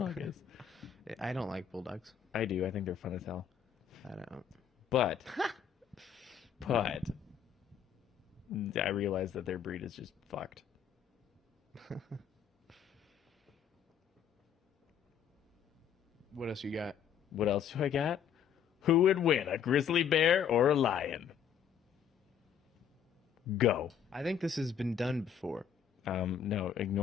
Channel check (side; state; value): right; quieter; 8.1 dB